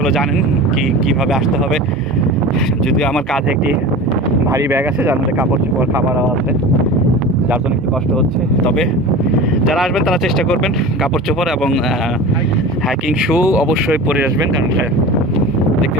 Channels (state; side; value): normal; both; correlation 0.33